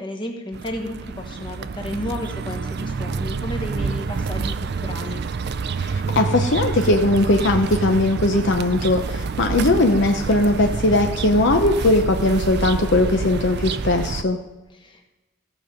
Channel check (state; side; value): normal; both; correlation 0.30